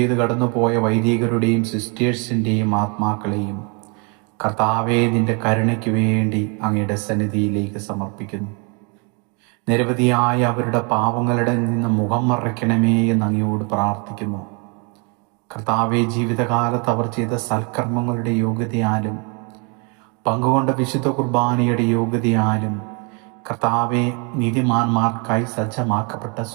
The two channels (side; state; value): left; quieter; 33.8 dB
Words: കടന്നുപോയ വൈദികരുടെയും സിസ്റ്റേഴ്സിൻ്റെയും ആത്മാക്കളെയും കർത്താവേ, നിന്റെ കരുണയ്ക്ക് വേണ്ടി അങ്ങയുടെ സന്നിധിയിലേക്ക് സമർപ്പിക്കുന്നു. നിരവധിയായ അവരുടെ പാവങ്ങളുടെ നിന്ന് മുഖം മറയ്ക്കണമേ എന്ന് അങ്ങയോട് പ്രാർത്ഥിക്കുന്നു. കർത്താവെ, ജീവിതകാലത്ത് അവർ ചെയ്ത സൽക്കർമ്മങ്ങളുടെ യോഗ്യതയാലും പങ്കുകൊണ്ട വിശുദ്ധ കുർബാനയുടെ യോഗ്യതയാലും കർത്താവെ, നീതിമാന്മാർക്കായി സജ്ജമാക്കപ്പെട്ട